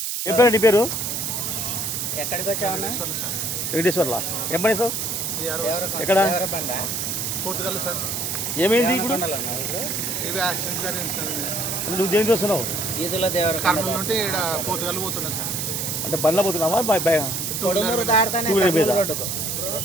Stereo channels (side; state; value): right; noise; hiss, 2 dB below the sound